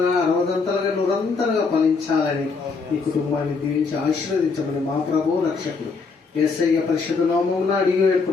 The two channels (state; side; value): quieter; right; 4.6 dB